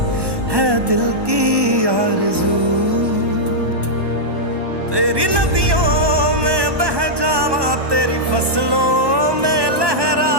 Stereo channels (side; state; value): left; late; 1.2 ms